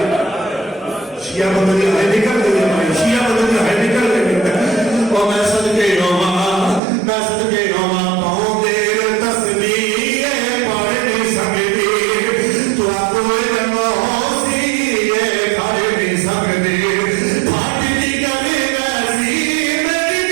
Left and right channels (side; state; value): left; drops out; at 6.8 s